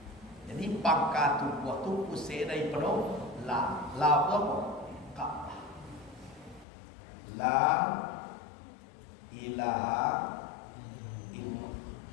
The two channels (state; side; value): drops out; right; at 6.7 s